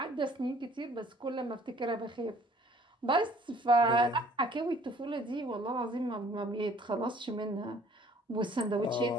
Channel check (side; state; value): both; normal; correlation 0.56